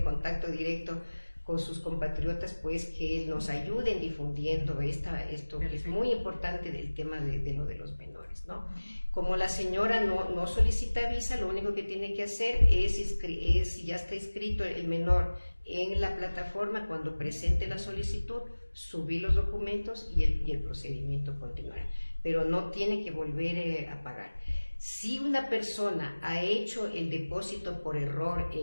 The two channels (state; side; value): inverted; both; correlation -1.00